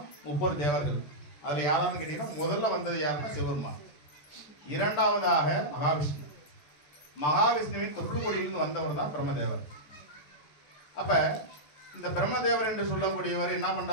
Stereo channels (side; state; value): right; late; 14 ms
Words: 30 தேவர்கள். அதில் யாரான்னு கேட்டீங்கன்னா முதல்ல வந்தது யாருன்னா சிவபெருமான். இரண்டாவதாக மகாவிஷ்ணு. மகாவிஷ்ணுவின் தொற்றுக்கொடியிலிருந்து வந்தவர் தான் பிரம்மதேவர். அப்போ இந்த பிரம்மதேவர் என்று சொல்லக்கூடியவர் என்ன